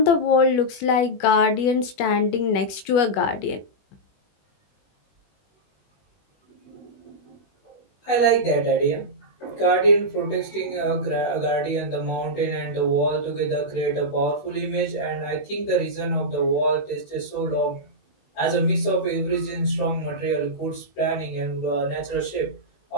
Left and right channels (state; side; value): late; right; 21 ms